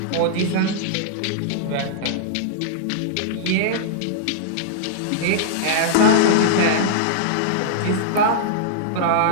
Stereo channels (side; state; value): both; different; correlation -0.02